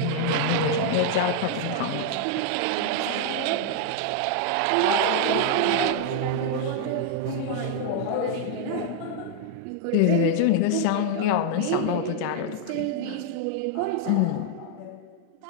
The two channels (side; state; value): both; different; correlation 0.00